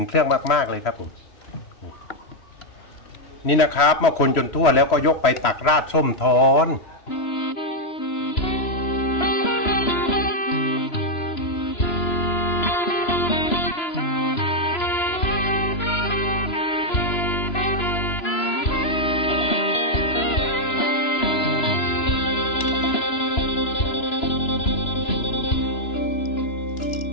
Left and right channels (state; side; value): late; right; 3.0 ms